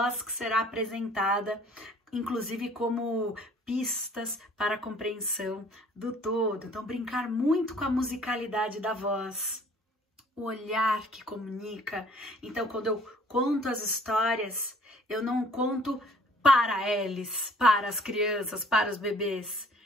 que será apresentada, inclusive como pistas para a compreensão do todo. Então brincar muito com a musicalidade da voz, o olhar que comunica. Então quando eu conto as histórias, eu não conto para eles, para as crianças, para os bebês.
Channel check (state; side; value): normal; both; correlation 0.55